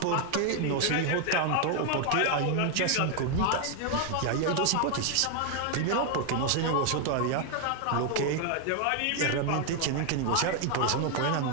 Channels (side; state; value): both; different; correlation 0.01